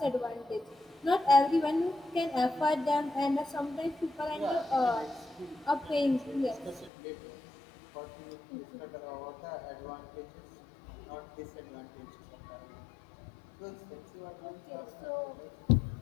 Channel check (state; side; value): drops out; right; at 6.9 s